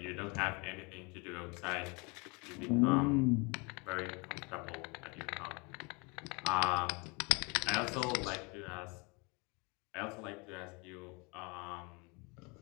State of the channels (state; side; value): quieter; right; 29.3 dB